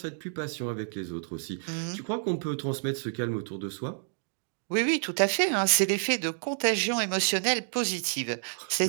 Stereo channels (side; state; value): left; silent; 58 dB below the other